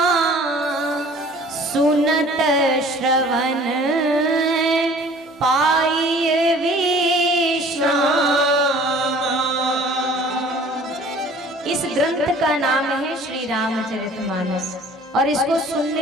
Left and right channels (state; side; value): normal; both; correlation 0.50